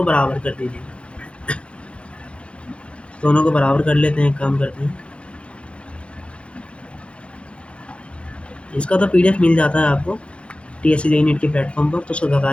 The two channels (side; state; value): right; late; 0.059 ms